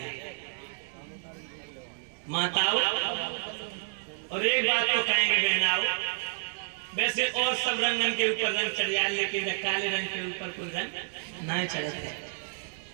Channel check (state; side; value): silent; left; digital silence